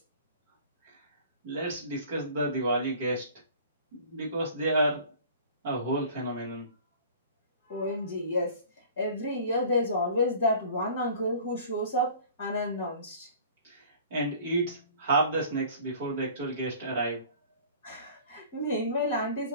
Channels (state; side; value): inverted; both; correlation -0.45